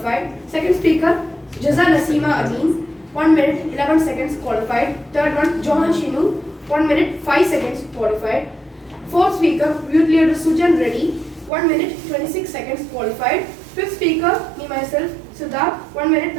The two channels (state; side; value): drops out; left; at 11.5 s